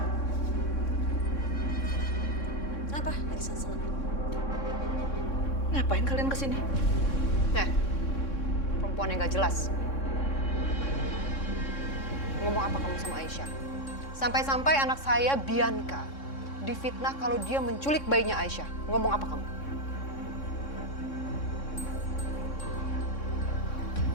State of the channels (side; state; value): right; late; 3.6 ms